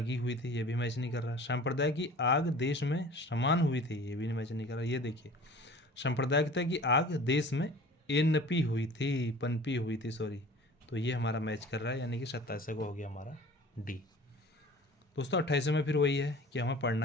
हुई थी, ये भी मैच नहीं कर रहा। संप्रदाय की आग देश में समान हुई थी, ये भी मैच नहीं कर रहा। ये देखिए सांप्रदायिकता की आग देश में पनपी हुई थी सॉरी, तो ये हमारा मैच कर रहा है, यानी कि 27 को हो गया हमारा डी। दोस्तों 28 में फिर वही है कि हमें पढ़ना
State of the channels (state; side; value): normal; both; correlation 0.44